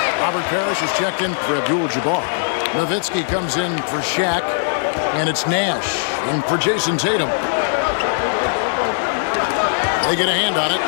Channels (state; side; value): silent; right; 66 dB below the other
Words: Robert Parrish is checked in for Abdul-Jabbar. Nowitzki comes in for Shaq. And it's Nash in for Jason Tatum. They get a hand on it.